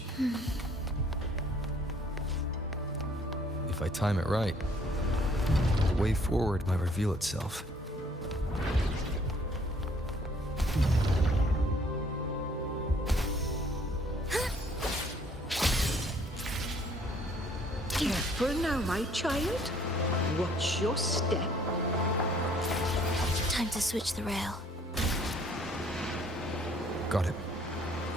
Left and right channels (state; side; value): normal; both; correlation 0.61